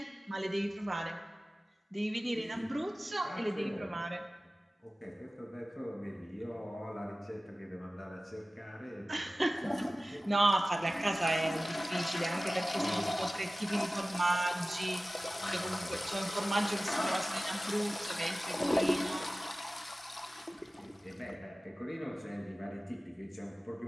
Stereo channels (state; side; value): normal; both; correlation 0.97